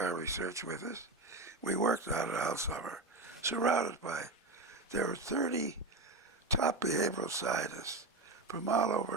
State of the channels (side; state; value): left; quieter; 3.1 dB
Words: research with us. We worked on it all summer, surrounded by, there were 30 top behavioral scientists from all